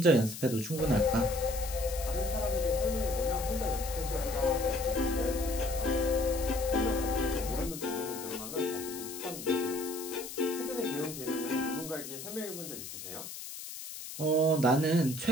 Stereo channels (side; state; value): left; noise; hiss, 10 dB below the sound